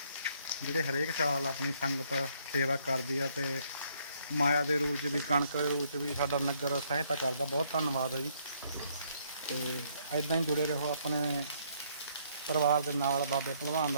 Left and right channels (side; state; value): both; inverted; correlation -0.68